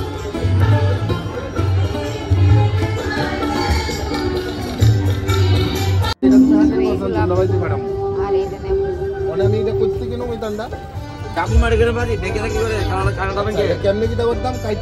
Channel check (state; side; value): identical; both; correlation 1.00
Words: আর এইটা নেব। অনেক এটা করতে কেন ওই দান্দা চাকু মারি করে বাজি দেখে থাকি করে খানা খাবেন কে কেমনে কি দাবার দাম